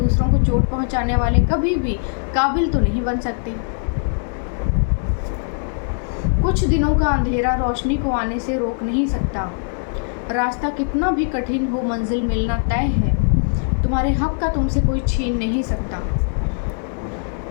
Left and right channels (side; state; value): right; silent; digital silence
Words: को चोट पहुँचाने वाले कभी भी काबिल तो नहीं बन सकते। कुछ दिनों का अंधेरा रोशनी को आने से रोक नहीं सकता। रास्ता कितना भी कठिन हो, मंजिल मिलना तय है। तुम्हारे हक का तुमसे कोई छीन नहीं सकता।